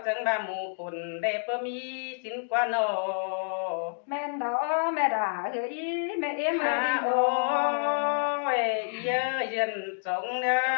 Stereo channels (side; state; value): right; silent; digital silence